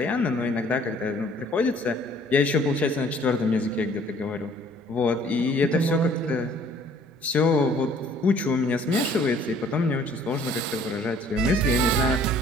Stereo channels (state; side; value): normal; both; correlation 0.57